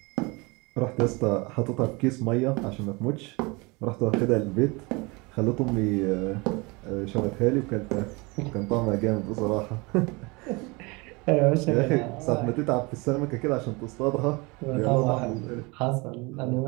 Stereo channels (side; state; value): left; quieter; 26.5 dB